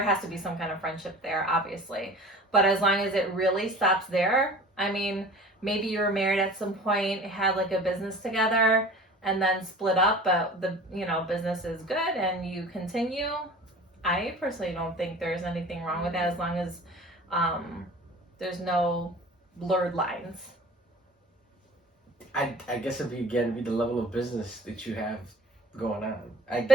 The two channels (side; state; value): both; normal; correlation 0.43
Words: has to be some kind of friendship there, obviously, but as long as it really stops there. I mean, maybe you were married at some point, had like a business together, and then split up, but the business is good and you continue. I personally don't think there's anything wrong with that, as long as there's no blurred lines. I guess it'd be the level of business that you have going on.